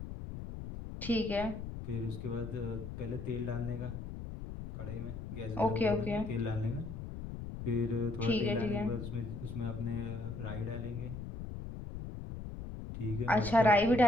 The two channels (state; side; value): noise; left; rumble, 8 dB below the sound